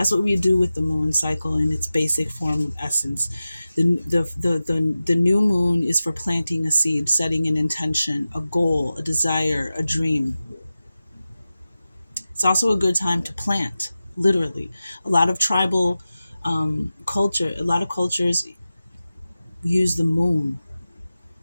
what we do with the moon cycle in its basic form of essence. The new moon is for planting a seed, setting an intention, a goal, a desire, a dream. It's also a good time to plant, literally. A lot of tribal culture, a lot of cultures use the moon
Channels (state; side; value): inverted; both; correlation -0.95